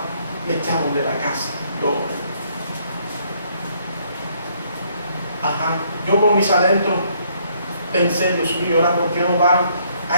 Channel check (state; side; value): inverted; both; correlation -0.67